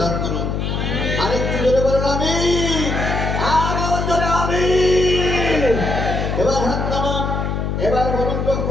দান করুন। আরেকটু জোরে বলেন আমিন, আরো জোরে আমিন। এবার হাত নামান। এবার বলুন তো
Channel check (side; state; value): left; noise; hum, 1 dB below the sound